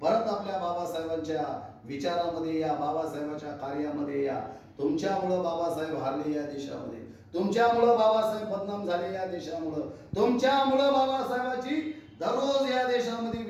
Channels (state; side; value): identical; both; correlation 1.00